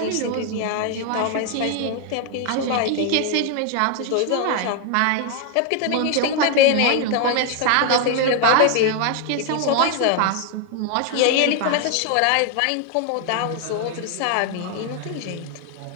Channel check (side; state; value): both; different; correlation 0.00